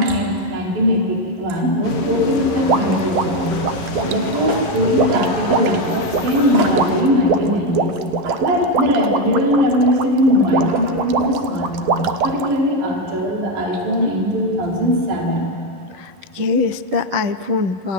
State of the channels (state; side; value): late; left; 11 ms